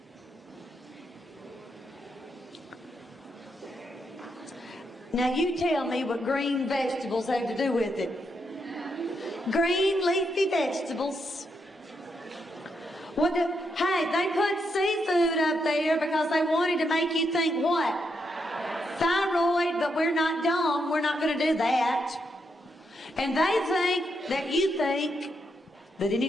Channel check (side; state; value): both; normal; correlation 0.80